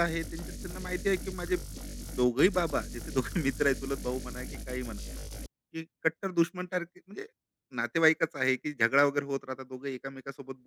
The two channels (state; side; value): identical; both; correlation 1.00